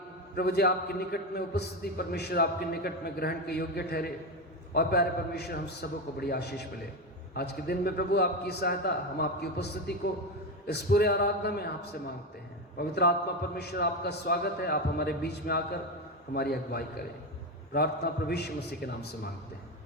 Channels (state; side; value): normal; both; correlation 0.15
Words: प्रभु जी आपके निकट में उपस्थिति परमेश्वर आपके निकट में ग्रहण के योग्य ठहरे। और प्यारे परमेश्वर, हम सबों को बड़ी आशीष मिले आज के दिन में। प्रभु आपकी सहायता, हम आपकी उपस्थिति को इस पूरे आराधना में आपसे मांगते हैं। पवित्र आत्मा परमेश्वर, आपका स्वागत है। आप हमारे बीच में आकर हमारी अगुवाई करें। प्रार्थना प्रभु यीशु मसीह के नाम से मांगते हैं,